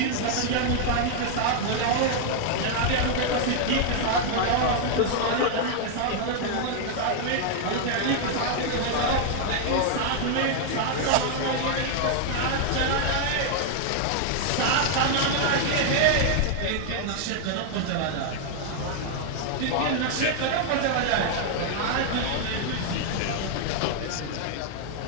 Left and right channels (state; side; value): different; both; correlation 0.00